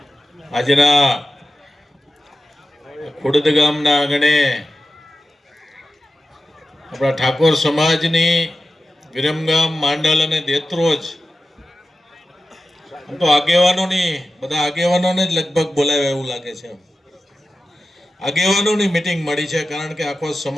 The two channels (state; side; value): normal; both; correlation 0.93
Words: આજના ખુડદ ગામના આંગણે આપણા ઠાકોર સમાજની વિરમગામ, માંડલ અને દેત્રોજ આમ તો આગેવાનોની બધા આગેવાનોને જ લગભગ બોલાવ્યા એવું લાગે છે. આગેવાનોની મીટિંગ મળી છે, કારણ કે આખો